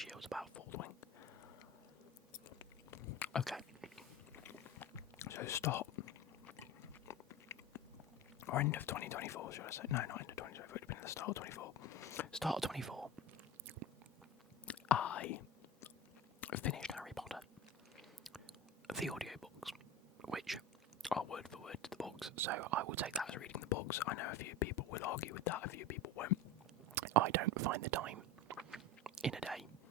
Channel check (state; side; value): normal; both; correlation 0.28